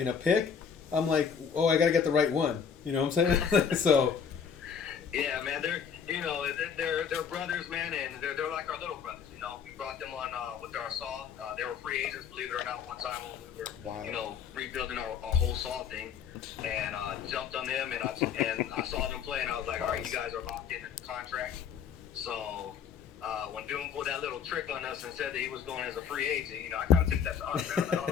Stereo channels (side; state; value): right; quieter; 7.1 dB